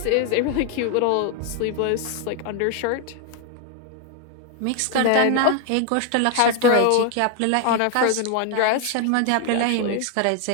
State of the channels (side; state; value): both; different; correlation 0.01